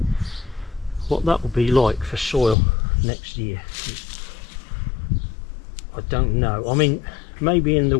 What that will be like for soil next year, I don't know. I mean, maybe in the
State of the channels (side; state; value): right; drops out; at 2.6 s